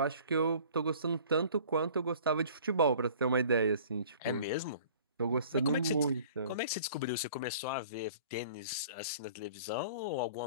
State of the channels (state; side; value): inverted; both; correlation -0.49